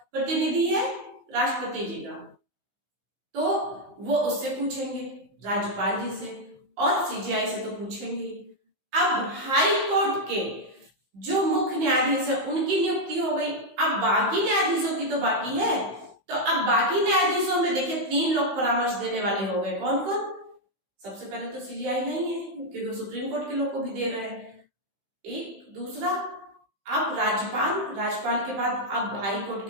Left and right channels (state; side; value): late; left; 15 ms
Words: प्रतिनिधि है? राष्ट्रपति जी का। तो वो उससे पूछेंगे, राज्यपाल जी से, और सीजीआई से तो पूछेंगे। अब हाई कोर्ट के जो मुख्य न्यायाधीश है उनकी नियुक्ति हो गई, अब बाकी न्यायाधीशों की तो बाकी है। तो अब बाकी न्यायाधीशों में देखिए 3 लोग परामर्श देने वाले हो गए। कौन कौन? सबसे पहले तो सीजीआई नहीं है, क्योंकि सुप्रीम कोर्ट के लोग को भी दे रहे हैं। एक दूसरा, अब राज्यपाल के बाद अब हाई कोर्ट